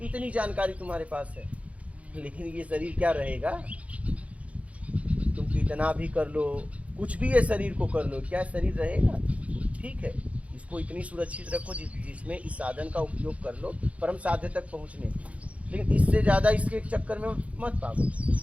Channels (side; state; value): left; late; 0.065 ms